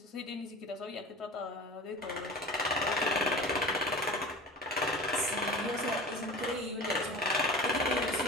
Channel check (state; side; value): normal; both; correlation 0.36